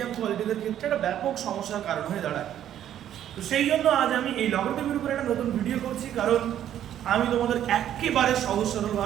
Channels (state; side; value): quieter; left; 10.9 dB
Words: কোয়ালিটিদের ক্ষেত্রে একটা ব্যাপক সমস্যার কারণ হয়ে দাঁড়ায়। তো সেই জন্য আজ আমি এই লগারিদমের উপরে একটা নতুন ভিডিও করছি, কারণ আমি তোমাদের একেবারে সহজ